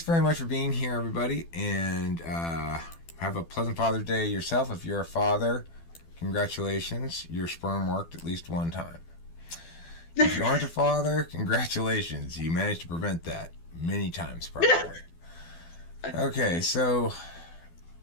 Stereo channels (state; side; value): late; right; 12 ms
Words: very much for being here, everybody, and have a pleasant Father's Day yourself. If you're a father, congratulations. Your sperm worked at least one time. If you aren't a father, congratulations. You managed to prevent that many times, probably. Okay, so